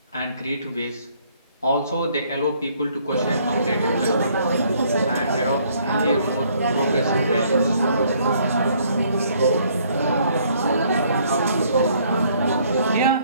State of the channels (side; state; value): both; inverted; correlation -0.64